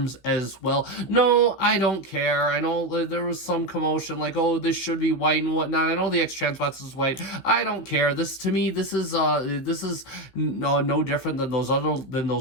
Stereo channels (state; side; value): late; right; 15 ms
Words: as well. No, I don't care. I know there was some commotion, like, oh, this should be white and whatnot. I know the X-Transbox is white. I don't care. This, to me, this is no different than